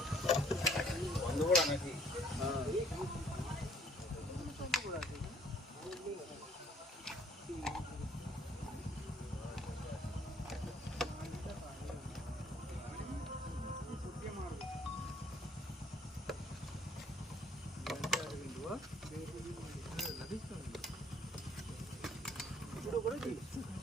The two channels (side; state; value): both; normal; correlation 0.61